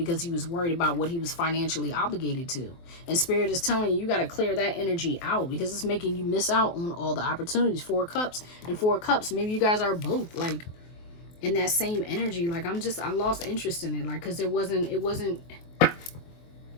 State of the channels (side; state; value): right; late; 23 ms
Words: he was worried about what he was financially obligated to. And Spirit is telling you, you got to clear that energy out, because it's making you miss out on all the opportunities. 4 of Cups and 4 of Cups. Maybe you guys are both like in that same energy. Like, I lost interest in it. Like, because there